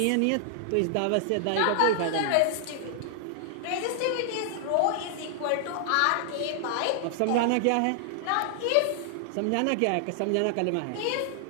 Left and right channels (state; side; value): different; both; correlation 0.00